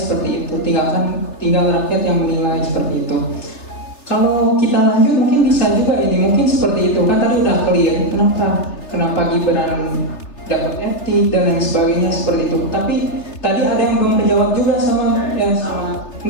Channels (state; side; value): late; right; 3.3 ms